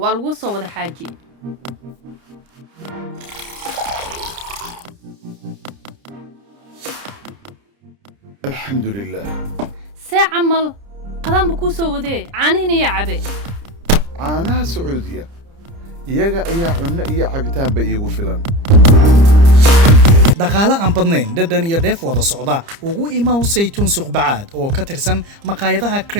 وذا حاجي الحمد لله ساعة عمل قدام بكوسو وذي عانيني يا عبي عاناها سعودية يجا أي عنا أي عبتان بيجو فلان dhaqaale aan badnayn dhadhan iyo dheef wada socda ugu imaw saytuun suuq bacaad oo ka tirsan maqaayadaha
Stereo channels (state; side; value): late; left; 30 ms